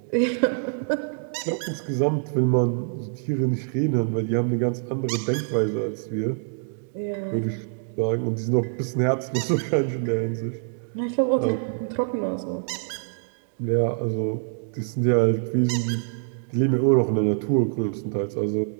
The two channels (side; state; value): left; silent; digital silence